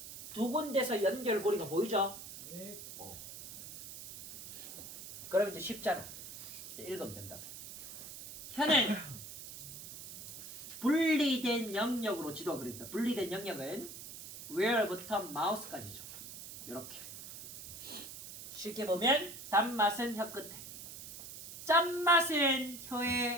두 군데서 연결고리가 보이죠? 네. 그럼 이제 쉽잖아. 이제 읽으면 된다. 혀는 분리된 영역으로 지도가 그려진다. 분리된 영역은 where부터 mouse까지죠. 이렇게. 쉽게 보면 단맛은 혀 끝에, 짠맛은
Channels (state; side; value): noise; right; hiss, 12 dB below the sound